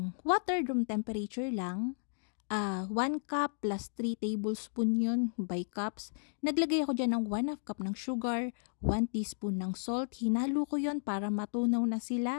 water room temperature lang. 1 cup plus 3 tablespoon yun by cups. Naglagay ako dyan ng 1/2 cup ng sugar, 1 teaspoon ng salt. Hinalo ko yun para matunaw na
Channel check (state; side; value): silent; right; digital silence